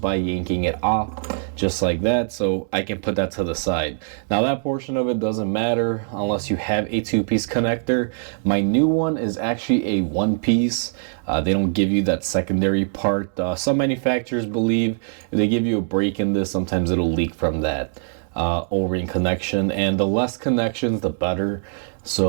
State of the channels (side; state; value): left; silent; digital silence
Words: by yanking it off, just like that, so I can put that to the side. Now that portion of it doesn't matter unless you have a two-piece connector. My new one is actually a one-piece. They don't give you that secondary part. Some manufacturers believe if they give you a break in this, sometimes it'll leak from that O-ring connection, and the less connections the better.